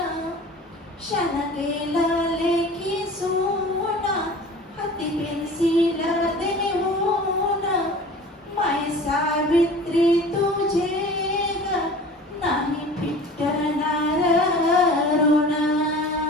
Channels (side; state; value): both; normal; correlation 0.41